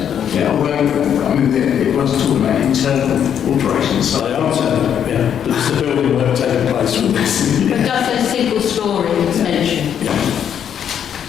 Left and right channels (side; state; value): right; quieter; 8.8 dB